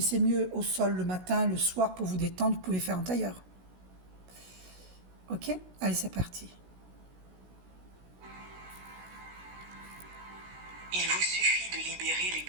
mieux au sol le matin, le soir, pour vous détendre, vous pouvez faire en tailleur. Ok? Allez, c'est parti. Il vous suffit de libérer les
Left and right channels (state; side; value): late; left; 16 ms